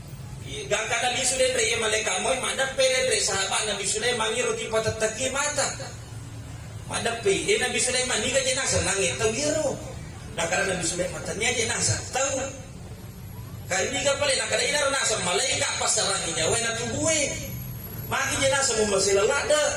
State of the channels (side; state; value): both; identical; correlation 1.00